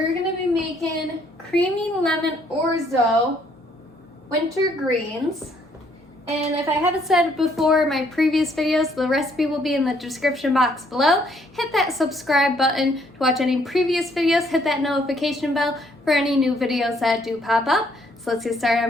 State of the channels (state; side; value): normal; both; correlation 0.67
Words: gonna be making creamy lemon orzo winter greens. And if I haven't said it before, my previous videos, the recipe will be in the description box below. Hit that subscribe button to watch any previous videos. Hit that notification bell for any new videos that do pop up. So let's get started on